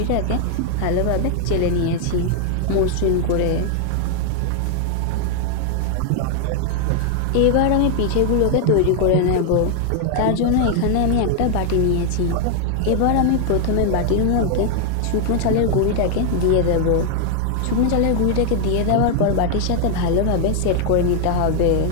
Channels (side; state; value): both; different; correlation 0.00